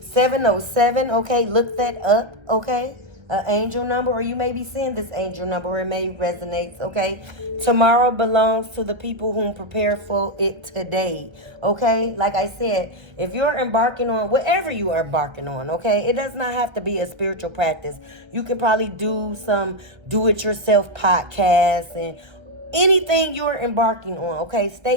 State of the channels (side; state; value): left; late; 1.3 ms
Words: 707, okay? Look that up, okay? An angel number, or you may be seeing this angel number. It may resonate, okay? Tomorrow belongs to the people who prepare for it today, okay? Like I said, if you're embarking on whatever you are embarking on, okay? It does not have to be a spiritual practice. You could probably do some do-it-yourself podcasts and anything you're embarking on, okay?